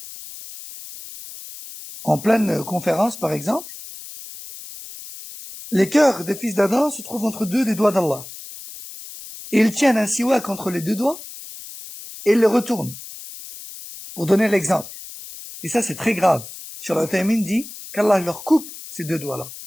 en pleine conférence par exemple, les cœurs des fils d'Adam se trouvent entre deux des doigts d'Allah. Et ils tiennent un siwak entre les deux doigts et ils le retournent. Pour donner l'exemple. Et ça c'est très grave. Cheikh Al-Uthaymin dit qu'Allah leur coupe ces deux doigts-là.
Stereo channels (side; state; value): left; noise; hiss, 14 dB below the sound